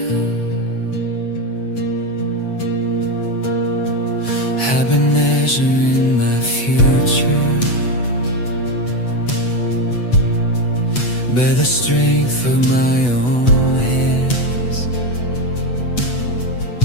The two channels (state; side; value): late; right; 8.1 ms